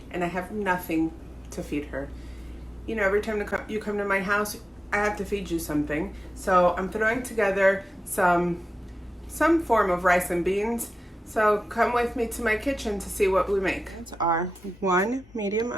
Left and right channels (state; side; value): normal; both; correlation 0.93